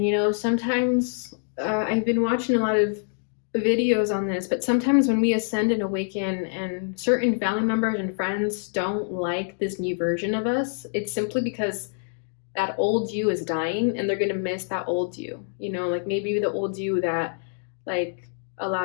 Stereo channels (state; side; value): silent; right; digital silence